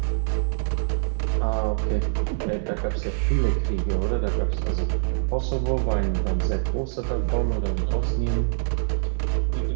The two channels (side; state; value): left; silent; digital silence